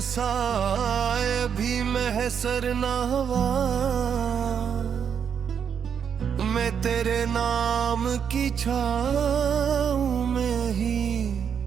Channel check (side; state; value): left; quieter; 7.5 dB